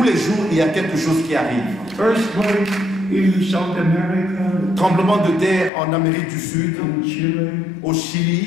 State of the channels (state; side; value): drops out; right; at 5.7 s